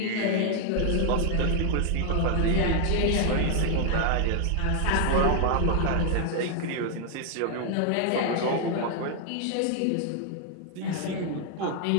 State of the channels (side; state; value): both; different; correlation 0.00